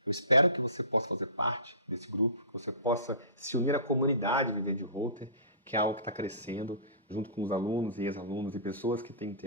Eu espero que você possa fazer parte desse grupo, que você possa se unir à comunidade Viver de Holter, que é algo que está crescendo, junto com os alunos e ex-alunos e pessoas que têm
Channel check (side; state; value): both; inverted; correlation -0.35